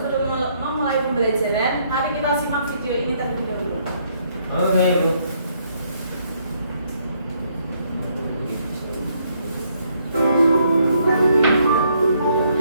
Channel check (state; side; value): inverted; both; correlation -0.71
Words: memulai pembelajaran, mari kita simak video ini terlebih dahulu. Oke, Bu.